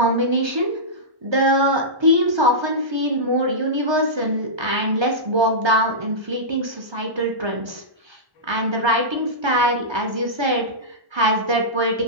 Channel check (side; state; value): left; late; 1.3 ms